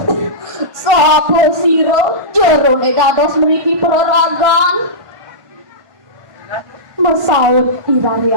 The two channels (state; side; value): late; left; 1.1 ms